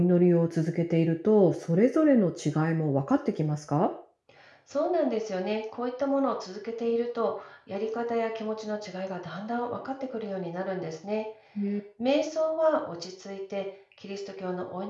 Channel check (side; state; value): both; identical; correlation 1.00